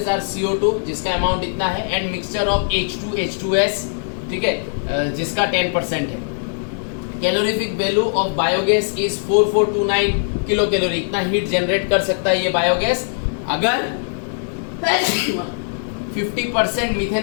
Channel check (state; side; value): silent; right; digital silence